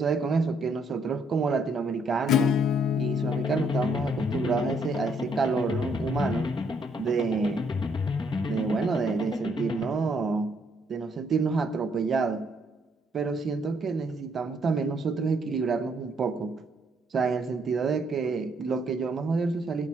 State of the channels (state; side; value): normal; both; correlation 0.70